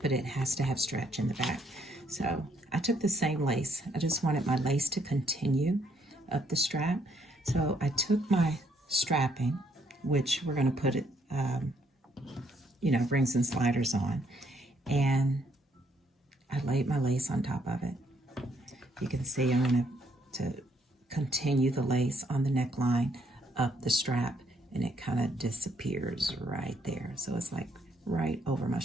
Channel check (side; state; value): both; normal; correlation 0.70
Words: but it has to have stretch in the back. So I took the same lace. I just wanted my lace to continue up the strap. So I took my strapping, which we're going to put it, rings and sliders on, and I laid my lace on top of it. You can see I'm going to continue the lace on the neckline up the strap, and it kind of disappears right there. So it's like right over my